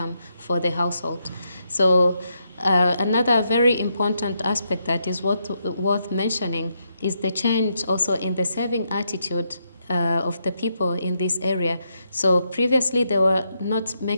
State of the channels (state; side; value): inverted; both; correlation -0.80